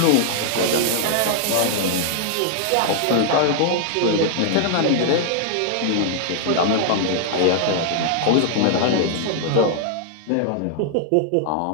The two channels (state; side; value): different; both; correlation 0.00